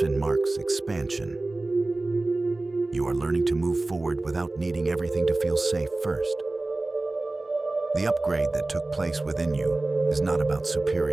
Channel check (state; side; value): quieter; left; 3.0 dB